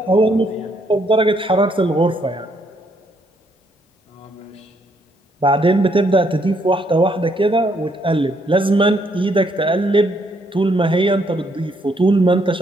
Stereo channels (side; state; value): both; normal; correlation 0.72